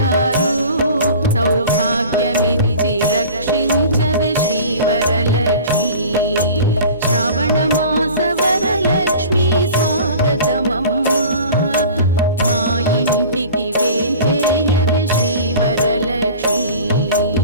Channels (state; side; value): inverted; both; correlation -0.41